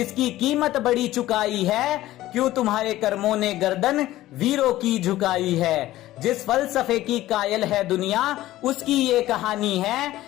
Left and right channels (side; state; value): right; quieter; 15.5 dB